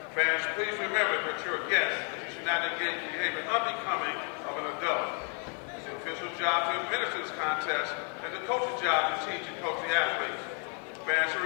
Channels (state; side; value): quieter; right; 36.9 dB